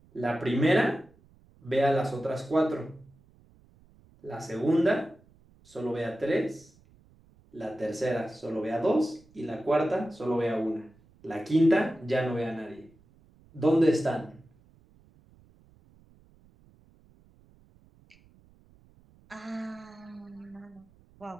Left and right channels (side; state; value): right; noise; rumble, 29 dB below the sound